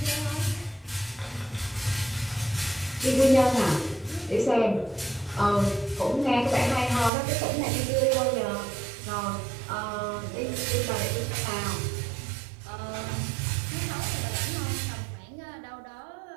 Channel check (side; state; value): left; drops out; at 7.1 s